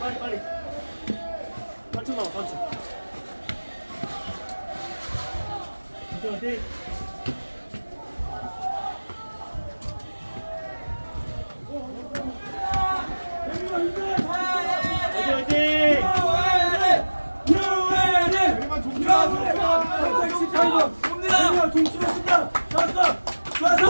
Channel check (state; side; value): inverted; both; correlation -1.00